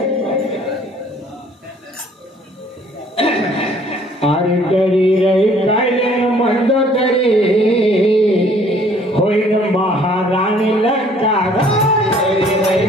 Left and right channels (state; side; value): normal; both; correlation 0.58